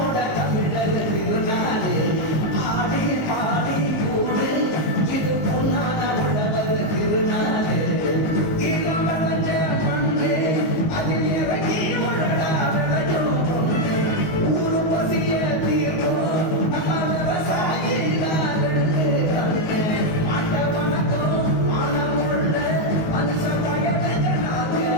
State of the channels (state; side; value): late; right; 19 ms